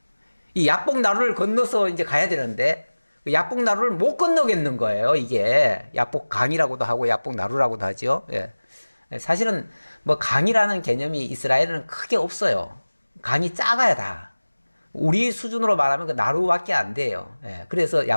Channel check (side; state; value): both; inverted; correlation -1.00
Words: 이 야복 나루를 건너서 이제 가야 되는데 그 야복 나루를 못 건너겠는 거예요. 이게 야복 강이라고도 하고 야복 나루라고도 하죠. 사실은 뭐 강이라는 개념이 이스라엘은 크게 없어요. 강이 작아야 다. 우리 수준으로 말하면 그 나루밖에 안 돼요. 그래서